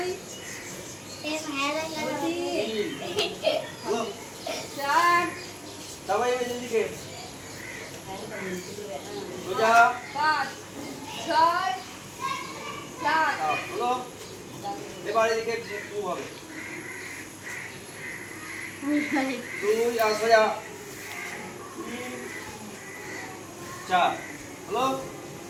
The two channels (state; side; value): identical; both; correlation 1.00